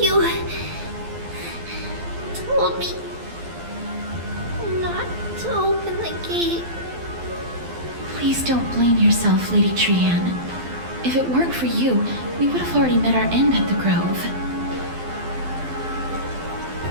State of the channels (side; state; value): left; late; 12 ms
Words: told me not to open the gate. Please don't blame yourself, Lady Trianne. If it weren't for you, we would have already met our end at the Grove.